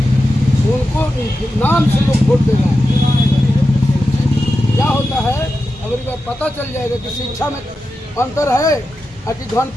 उनको नाम से लोग वोट दे रहे हैं। क्या होता है, अगर ये पता चल जाएगा कि शिक्षा में अंतर है और कि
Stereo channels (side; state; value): both; normal; correlation 0.90